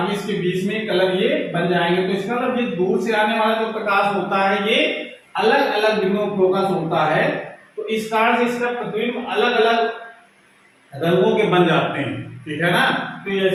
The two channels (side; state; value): both; identical; correlation 1.00